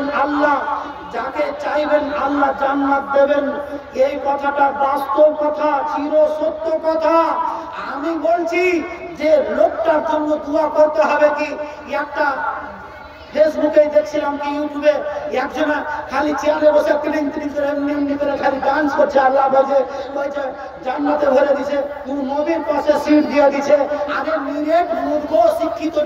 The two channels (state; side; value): identical; both; correlation 1.00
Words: আল্লাহ যাকে চাইবেন আল্লাহ জান্নাত দেবেন এই কথাটা বাস্তব কথা চির সত্য কথা আমি বলছি যে লোকটার জন্য দোয়া করতে হবে কি একটা ফেসবুকে দেখছিলাম কি ইউটিউবে একজনা খালি চেয়ারে বসে তিলিং তিলিং করে এমনি করে খালি ডান্স করছে আল্লাহ বলছে জান্নাতে ভরে দিছে তুই নবীর পাশে সিট দিয়ে দিছে আরে নিরেট মূর্খ শিক্ষিত